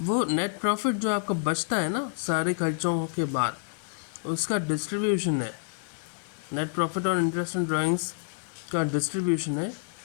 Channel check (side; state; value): right; silent; digital silence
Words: वो net profit जो आपका बचता है ना सारे खर्चों के बाद, उसका डिस्ट्रीब्यूशन है। net profit और interest on drawings का डिस्ट्रीब्यूशन है